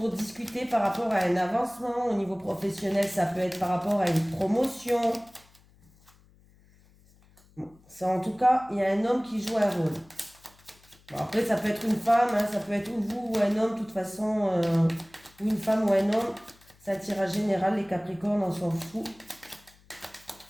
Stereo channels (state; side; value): noise; left; hum, 29 dB below the sound